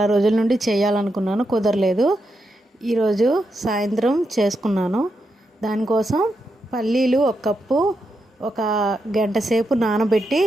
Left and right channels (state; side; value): normal; both; correlation 0.84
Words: రోజుల నుండి చేయాలనుకున్నాను, కుదరలేదు. ఈరోజు సాయంత్రం చేసుకున్నాను. దానికోసం పల్లీలు ఒక కప్పు ఒక గంట సేపు నానబెట్టి